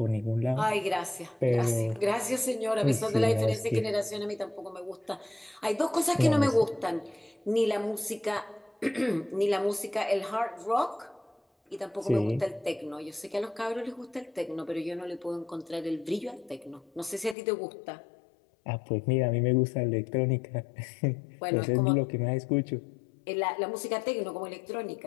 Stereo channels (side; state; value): right; drops out; at 17.4 s